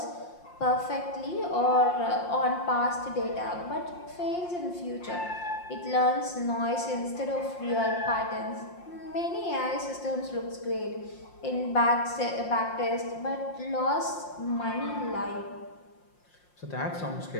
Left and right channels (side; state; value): right; late; 5.7 ms